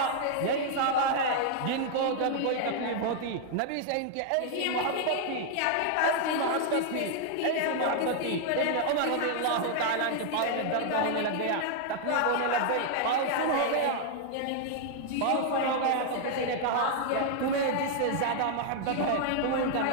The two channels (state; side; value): different; both; correlation 0.00